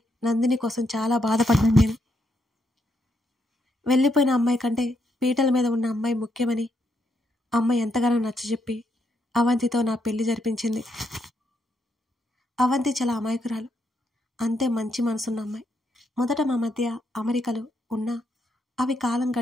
నందిని కోసం చాలా బాధపడ్డాను నేను. వెళ్ళిపోయిన అమ్మాయి కంటే పీటల మీద ఉన్న అమ్మాయి ముఖ్యమని అమ్మ ఎంతగానో నచ్చజెప్పి అవంతితో నా పెళ్లి జరిపించింది. అవంతి చాలా అమాయకురాలు, అంతే మంచి మనసున్న అమ్మాయి. మొదట మా మధ్య అమెరికలు ఉన్నా అవి కాలం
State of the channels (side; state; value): both; normal; correlation 0.78